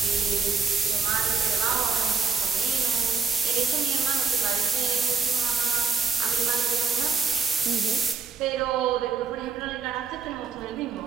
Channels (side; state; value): left; quieter; 5.3 dB